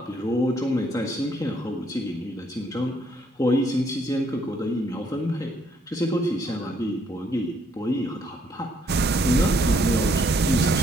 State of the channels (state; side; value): normal; both; correlation 0.69